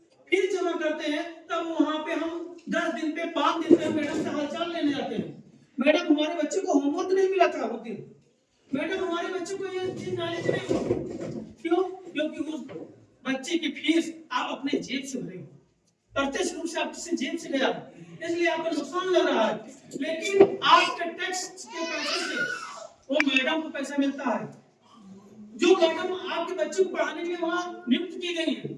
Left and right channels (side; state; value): both; identical; correlation 1.00